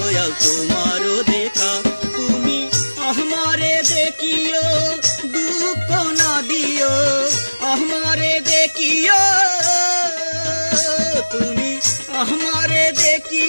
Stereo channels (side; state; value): both; inverted; correlation -1.00